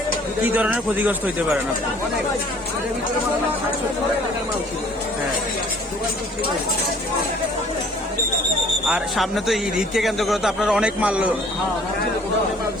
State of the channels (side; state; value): both; normal; correlation 0.54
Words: কি ধরনের ক্ষতিগ্রস্ত হইতে পারেন আপনি? হ্যাঁ, আর সামনে তো ঈদকে কেন্দ্র করে তো আপনার অনেক মাল।